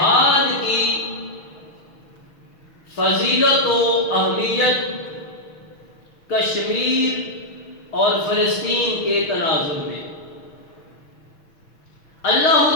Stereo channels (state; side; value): late; right; 6.4 ms